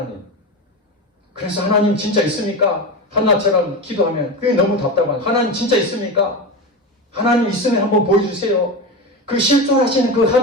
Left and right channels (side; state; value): both; normal; correlation 0.21